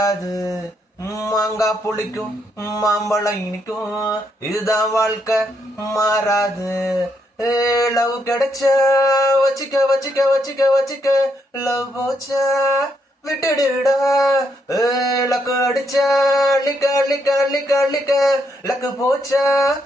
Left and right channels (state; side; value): normal; both; correlation 0.77